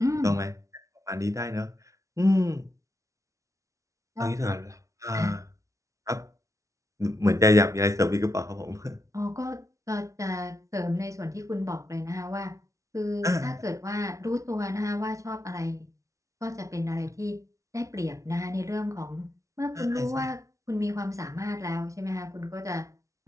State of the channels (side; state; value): left; late; 0.15 ms